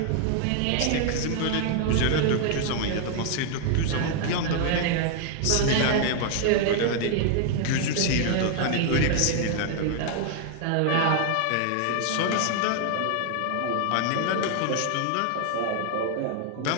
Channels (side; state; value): both; different; correlation 0.00